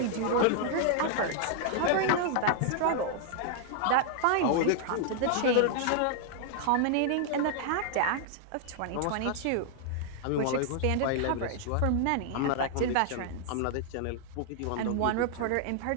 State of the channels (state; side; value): different; both; correlation 0.00